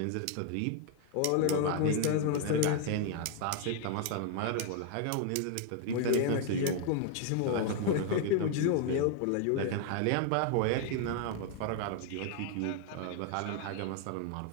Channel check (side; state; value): both; different; correlation 0.00